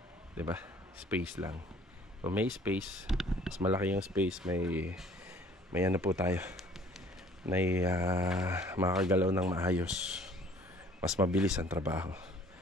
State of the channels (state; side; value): normal; both; correlation 0.55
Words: 'Di ba? Space lang. So may space, mas malaki yung space, may ano po tayo. May makakagalaw ng maayos. Mas mabilis ang trabaho.